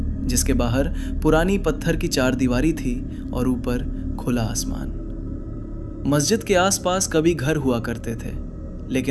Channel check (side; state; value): both; identical; correlation 1.00